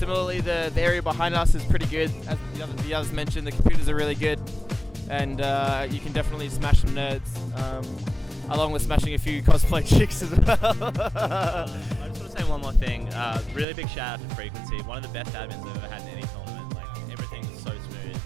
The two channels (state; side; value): drops out; left; at 13.7 s